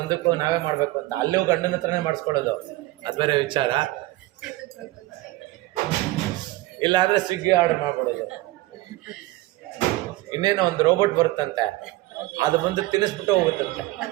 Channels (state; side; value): quieter; left; 18.5 dB